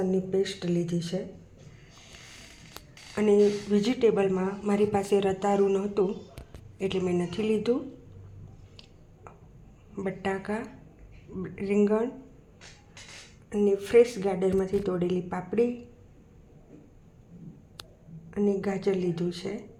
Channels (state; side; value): identical; both; correlation 1.00